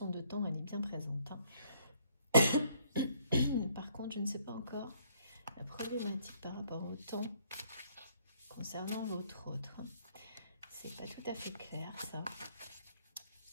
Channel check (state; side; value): inverted; both; correlation -0.65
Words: de temps, elle est bien présente. Par contre, je ne sais pas encore la problématique par rapport au temps concernant votre autre. C'est pas tout à fait clair, ça.